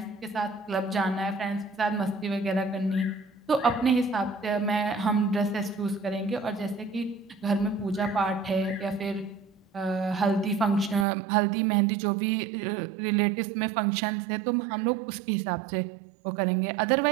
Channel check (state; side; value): drops out; left; at 11.1 s